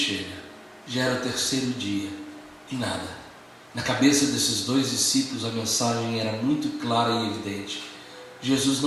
já era o terceiro dia, e nada. Na cabeça desses dois discípulos a mensagem era muito clara e evidente. Jesus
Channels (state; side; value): identical; both; correlation 1.00